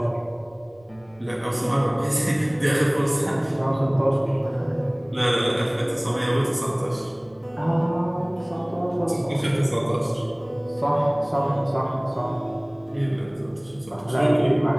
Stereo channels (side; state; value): right; noise; rumble, 29 dB below the sound